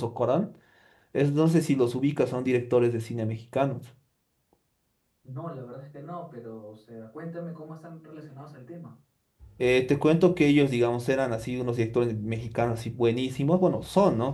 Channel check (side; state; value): both; identical; correlation 1.00